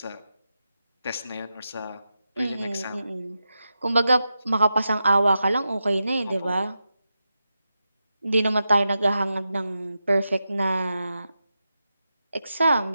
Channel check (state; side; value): inverted; both; correlation -0.89